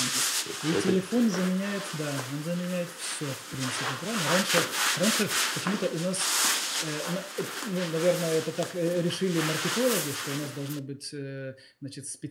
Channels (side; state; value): both; identical; correlation 1.00